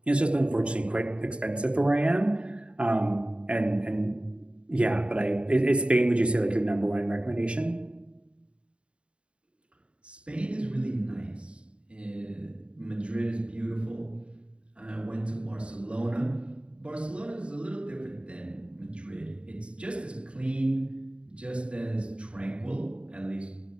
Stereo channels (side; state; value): left; late; 0.057 ms